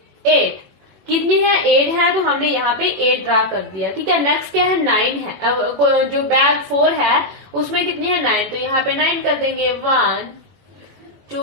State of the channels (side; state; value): left; late; 21 ms